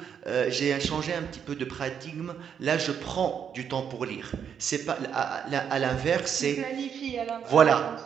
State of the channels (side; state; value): left; quieter; 7.9 dB